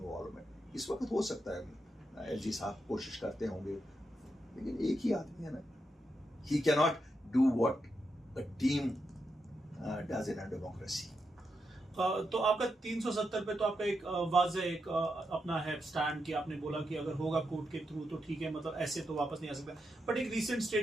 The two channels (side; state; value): both; normal; correlation 0.85